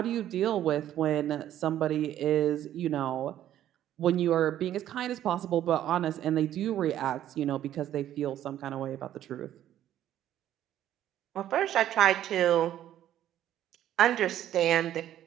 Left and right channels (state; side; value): quieter; left; 11.9 dB